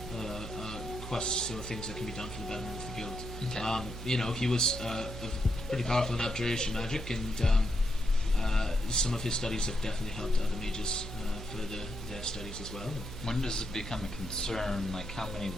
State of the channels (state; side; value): noise; right; hum, 10 dB below the sound